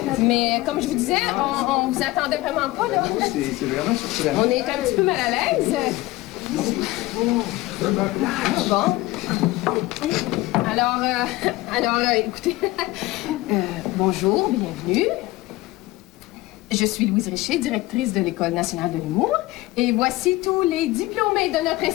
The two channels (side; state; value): right; quieter; 18.9 dB